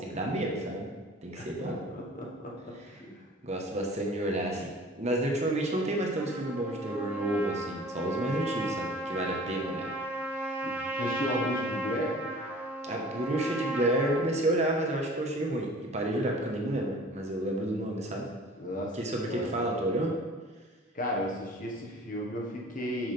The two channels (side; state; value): both; normal; correlation 0.46